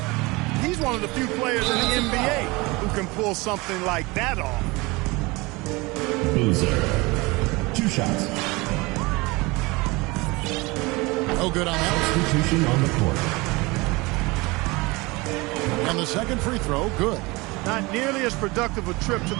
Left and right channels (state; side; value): quieter; left; 23.9 dB